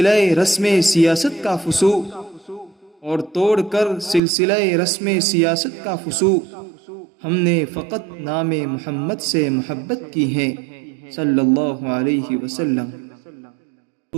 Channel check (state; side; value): drops out; left; at 4.2 s